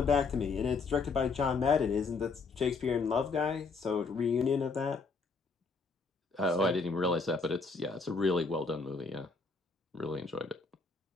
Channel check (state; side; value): quieter; right; 4.4 dB